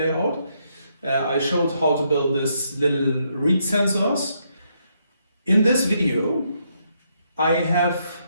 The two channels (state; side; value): inverted; both; correlation -0.76